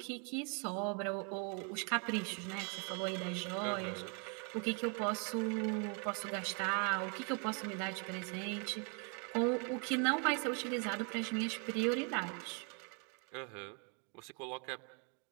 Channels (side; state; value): left; quieter; 37.2 dB